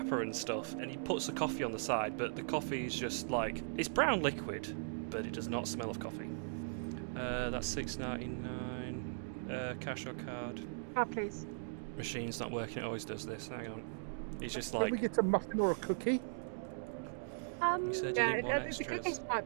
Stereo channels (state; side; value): silent; left; digital silence